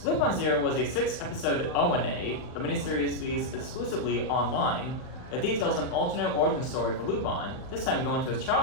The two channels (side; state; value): right; late; 39 ms